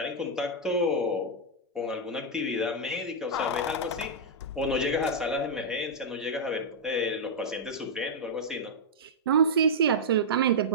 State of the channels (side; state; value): both; normal; correlation -0.07